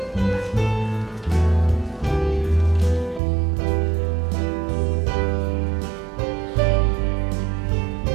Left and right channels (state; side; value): drops out; left; at 3.2 s